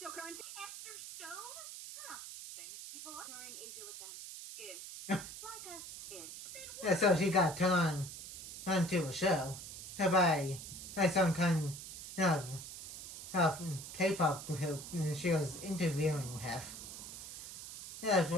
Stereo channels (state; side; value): noise; right; hiss, 10 dB below the sound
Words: Esther Stone? Huh. Famous people are touring Asia with them. Ish. Like us. Ish. Yeah, so she got turned on to a show by some kind of K-pop group she was interviewing with. Yeah,